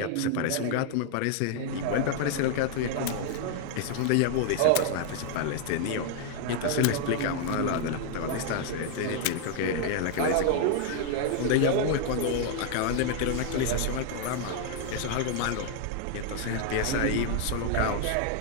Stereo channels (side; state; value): both; different; correlation 0.00